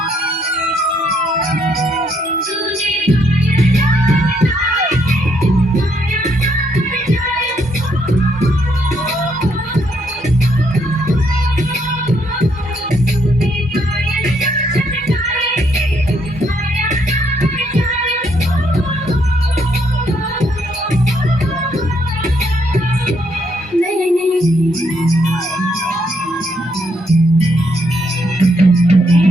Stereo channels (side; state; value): both; normal; correlation 0.73